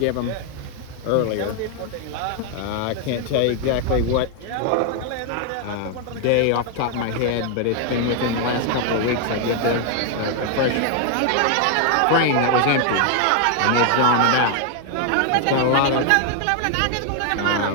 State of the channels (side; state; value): both; different; correlation 0.00